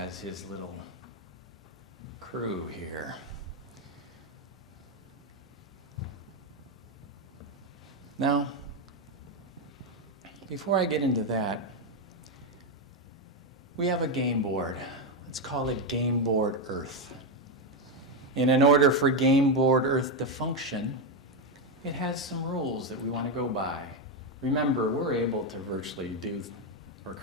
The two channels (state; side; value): normal; both; correlation 0.06